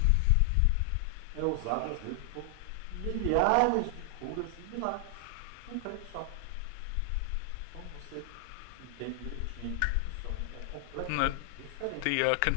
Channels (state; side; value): different; both; correlation 0.00